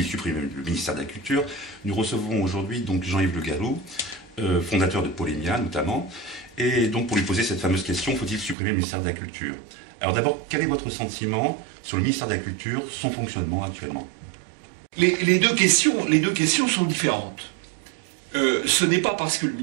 supprimer le ministère de la Culture, nous recevons aujourd'hui donc Jean-Yves Le Gallou, fondateur de Polémia notamment, et donc pour lui poser cette fameuse question, faut-il supprimer le ministère de la Culture? Alors d'abord, quel est votre sentiment sur le ministère de la Culture, son fonctionnement actuellement? Les deux questions sont différentes. Ce n'est pas parce que le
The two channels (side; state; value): left; drops out; at 8.6 s